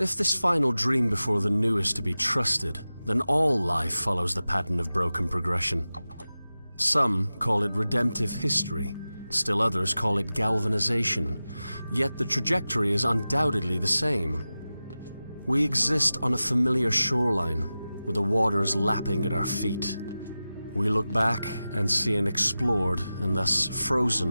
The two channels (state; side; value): inverted; both; correlation -0.95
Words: this final dream before the new is to be trusted, then all life follows the pattern of broken progression. Some call it redemptive history, still others call it galvanization, yet the trajectory is undoubtedly the same. We exist on a familiar shoreline, with the waters lapping at our feet. We look back and see an explored and thus